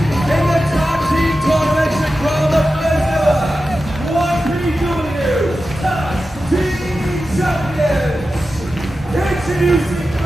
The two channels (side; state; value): both; normal; correlation 0.92